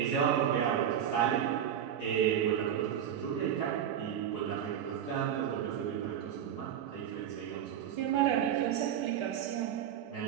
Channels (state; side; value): quieter; left; 9.5 dB